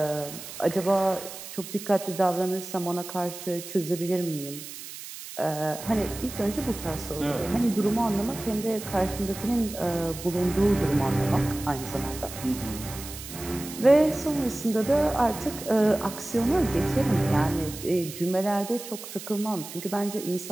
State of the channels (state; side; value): noise; right; hiss, 12 dB below the sound